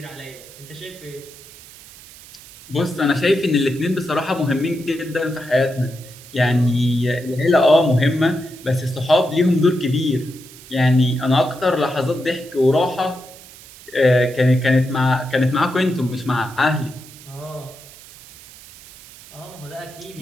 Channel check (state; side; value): noise; right; hiss, 20 dB below the sound